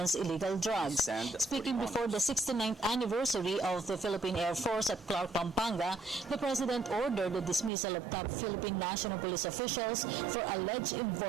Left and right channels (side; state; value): left; drops out; at 7.7 s